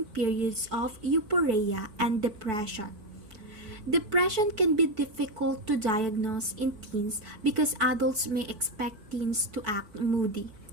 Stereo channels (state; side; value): late; left; 4.5 ms